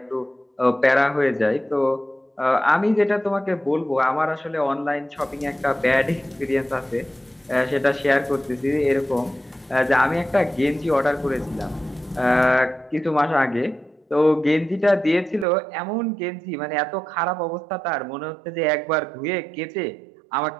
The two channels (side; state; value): left; drops out; at 15.5 s